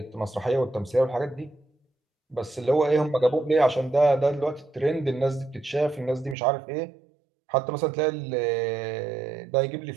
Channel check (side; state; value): left; drops out; at 6.4 s